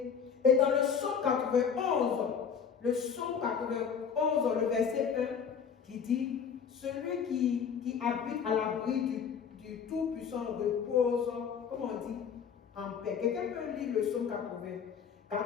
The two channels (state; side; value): quieter; right; 6.9 dB